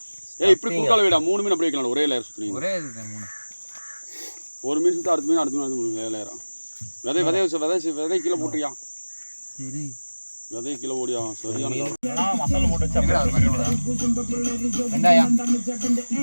ஏய் இப்படி குறுக்கால வைடா. 3 மீன் அப்படியே வைக்கலாம். ஒரே லேயர் சுற்றுனீங்க. ஒரே இது 3. ஒரு மீன் சுற்றி அடுத்த மீன் 3 லேயரா. விதை கீழே போட்டுறியா? சரி விதை கீழே ஓடியா? சரியான மசாலா போட்டு வச்சு வெங்காயம்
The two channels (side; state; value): both; inverted; correlation -1.00